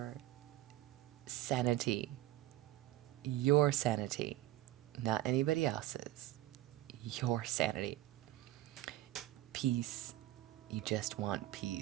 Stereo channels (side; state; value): left; quieter; 15.5 dB